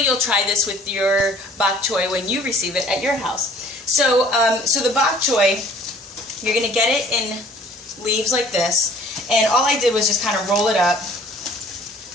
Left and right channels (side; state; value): both; normal; correlation 0.53